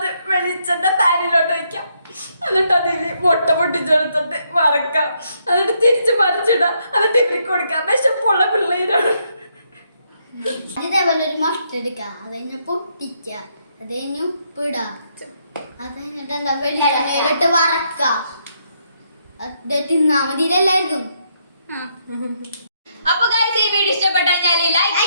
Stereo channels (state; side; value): inverted; both; correlation -0.75